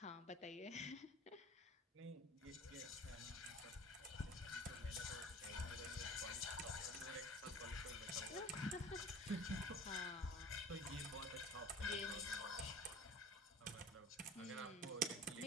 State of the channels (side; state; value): both; normal; correlation 0.43